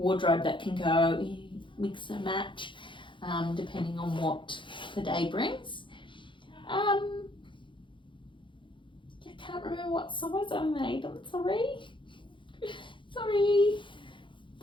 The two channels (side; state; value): right; late; 0.24 ms